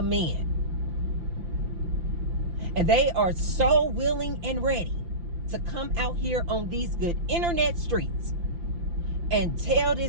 men. And they are so willing and ready to come out here on these good internet streets and tell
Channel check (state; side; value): late; left; 5.8 ms